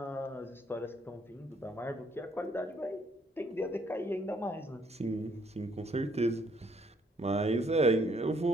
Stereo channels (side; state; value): both; normal; correlation 0.67